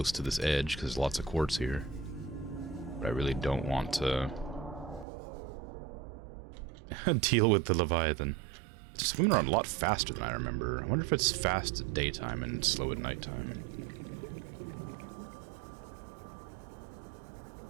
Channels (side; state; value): left; drops out; at 5.1 s